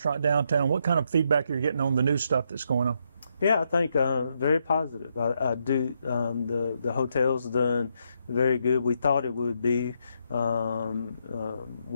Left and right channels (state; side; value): inverted; both; correlation -0.77